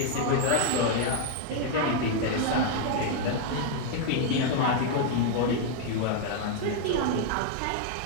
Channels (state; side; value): different; both; correlation 0.00